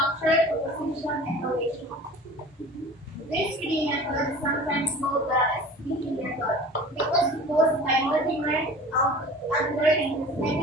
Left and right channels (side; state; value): both; normal; correlation 0.41